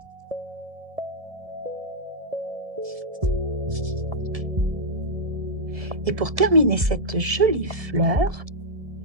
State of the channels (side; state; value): left; late; 1.8 ms